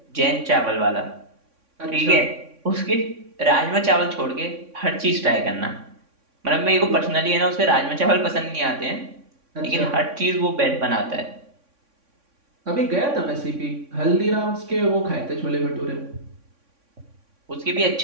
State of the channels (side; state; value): left; late; 3.6 ms